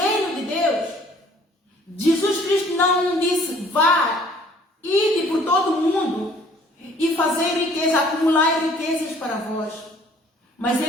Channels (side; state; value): both; normal; correlation 0.56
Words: de Deus, Jesus Cristo não disse, vá, ide por todo o mundo e fazer riqueza, acumular riquezas para vós. Mas